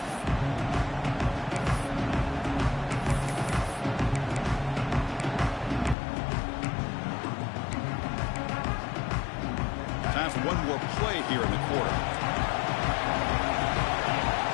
Time for one more play here in the quarter.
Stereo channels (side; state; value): right; drops out; at 6.0 s